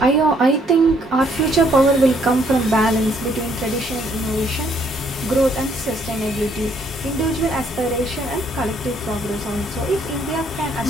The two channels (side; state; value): both; normal; correlation 0.68